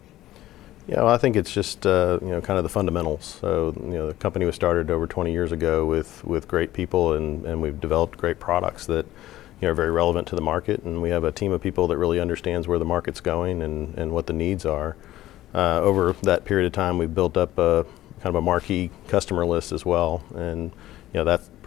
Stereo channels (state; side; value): quieter; right; 14.9 dB